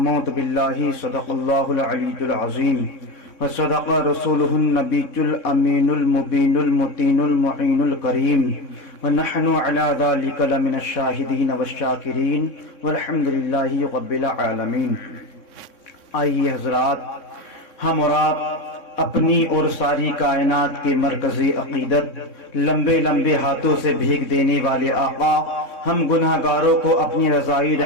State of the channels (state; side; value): late; right; 3.6 ms